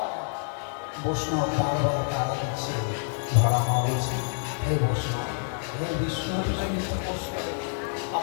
বৈষ্ণব বারবার তারা দিচ্ছে, ধরা মা বলছে, হে বৈষ্ণব, হে বিষ্ণু জনিত বৈষ্ণব,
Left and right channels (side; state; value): right; silent; 60 dB below the other